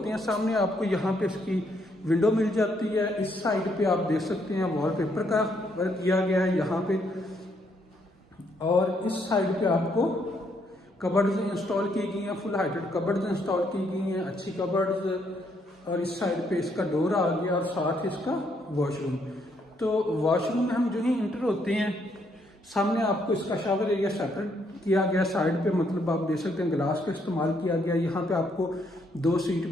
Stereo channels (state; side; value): normal; both; correlation 0.73